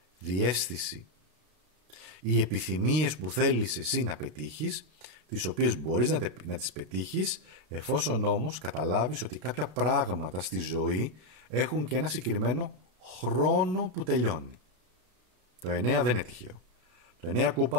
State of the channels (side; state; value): left; late; 33 ms